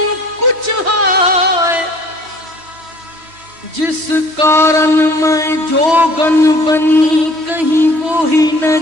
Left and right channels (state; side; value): late; left; 3.1 ms